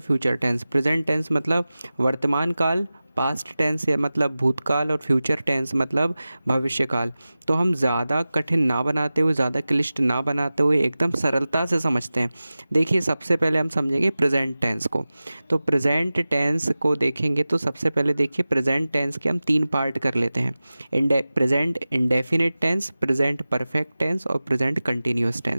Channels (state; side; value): inverted; both; correlation -0.96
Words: टेंस। प्रेजेंट टेंस मतलब वर्तमान काल, पास्ट टेंस या मतलब भूतकाल, और फ्यूचर टेंस मतलब भविष्यकाल। तो हम ज़्यादा कठिन ना बनाते हुए, ज़्यादा क्लिष्ट ना बनाते हुए एकदम सरलता से समझते हैं। देखिए, सबसे पहले हम समझेंगे प्रेजेंट टेंस को। तो प्रेजेंट टेंस को देखेंगे तो सबसे पहले देखिए, प्रेजेंट टेंस के हम 3 पार्ट कर लेते हैं। Present indefinite tense, present perfect tense और प्रेजेंट कंटिन्यूस